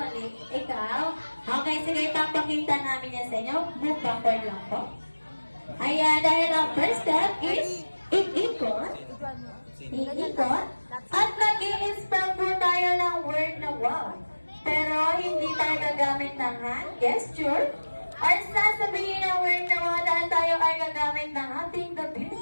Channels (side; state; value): both; inverted; correlation -1.00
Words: ikaw? Okay, sige, papakita namin yan sa inyo. Move backward lang po. Ayan, dahil ang first step is iikot. Iikot. At mag-i-spell po tayo ng word na wow. Pero hindi tayo gagamit ng hand gesture. Or sasabihin ng word na wow dahil tayo ay gagamit ng ating the